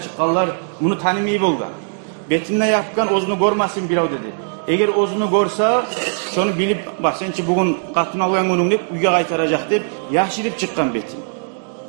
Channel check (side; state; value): left; silent; 66 dB below the other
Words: bunu tanımayı bolgan. Betinde yapkan ozunu görmesin birav dedi. Eğer ozunu görse, şunu bilip, bak sençi bugün katına koyan günün deyip, uyga kaytaracak deyip, yaşirip çıkkan betin.